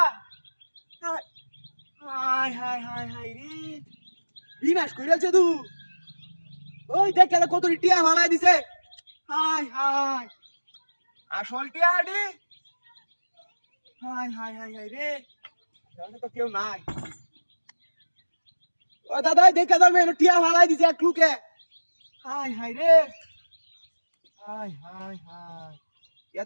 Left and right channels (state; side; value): inverted; both; correlation -1.00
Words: আয় আয় হায় হায় হায় রে বিনাশ কইরাছে তু ওই দেখ কেন কত টিয়া ভালাই দিছে হায় হায় আসল টিয়া আডি হায় হায় হায় হায় রে তাহলে তো কেউ নাই ও দাদা দেখে দাও মেনু টিয়া ভালাই দিছে এক লুকে হায় হায় রে হায় হায় হায়